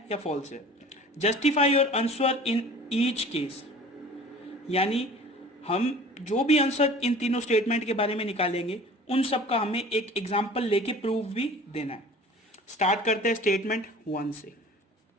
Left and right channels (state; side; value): normal; both; correlation 0.44